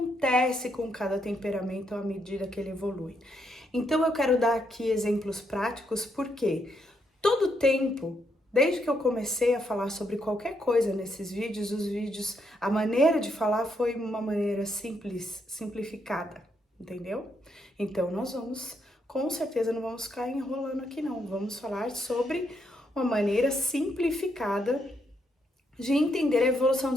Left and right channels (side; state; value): both; normal; correlation 0.77